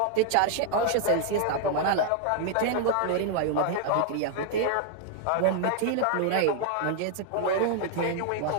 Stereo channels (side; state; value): both; different; correlation 0.00